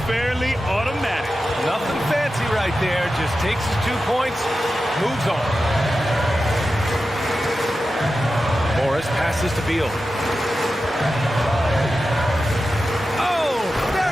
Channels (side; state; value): both; normal; correlation 0.92